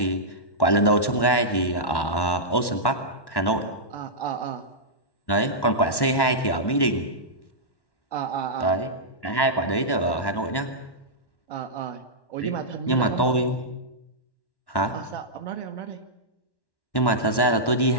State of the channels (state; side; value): late; right; 1.1 ms